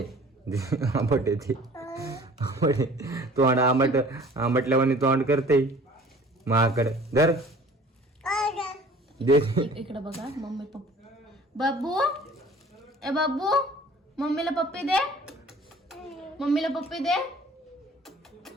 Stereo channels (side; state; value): both; normal; correlation 0.49